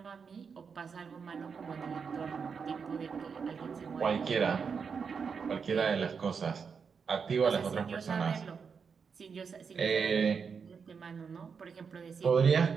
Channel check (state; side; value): quieter; left; 5.9 dB